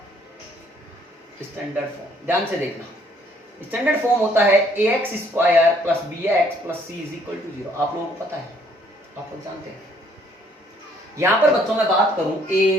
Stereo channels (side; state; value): both; normal; correlation 0.64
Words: ध्यान से देखना। स्टैंडर्ड फॉर्म होता है ax square plus bx plus c is equal to 0। आप लोगों को पता है, आप लोग जानते हैं। यहां पर बच्चों मैं बात करूं a